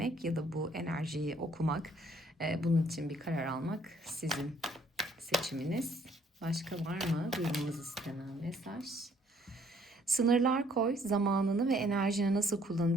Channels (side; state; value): both; normal; correlation 0.63